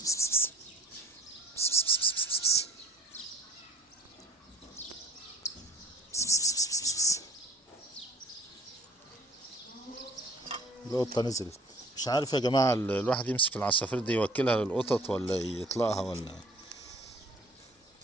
القطة نزلت. مش عارف يا جماعة، الواحد يمسك العصافير دي يوكلها للقطط ولا يطلقها، ولا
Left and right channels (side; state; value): both; normal; correlation 0.49